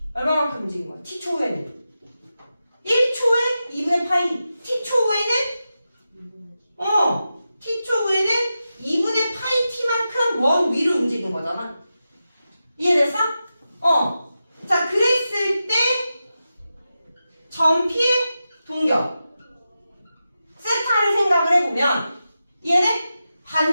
얼마만큼 움직인 거야? t초 후에는 1초에 2분의 파이. t초 후에는 t초 후에는 2분의 파이 t만큼 원 위로 움직인 거잖아. 이해됐어? 자, 그랬을 때 전피의 동격 세타를 생각을 해보면 얘네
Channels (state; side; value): inverted; both; correlation -0.91